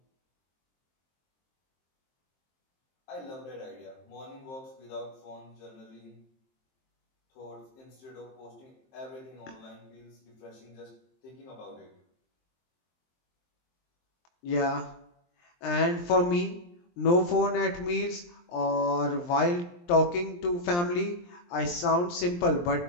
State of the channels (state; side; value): late; right; 23 ms